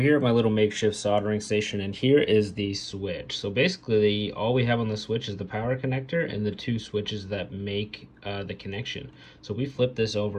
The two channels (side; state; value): both; identical; correlation 1.00